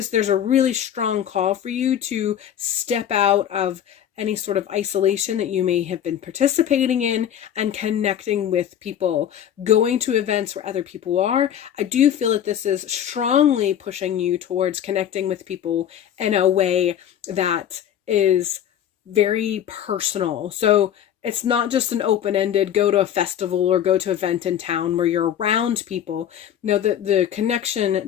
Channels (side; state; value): right; quieter; 10.0 dB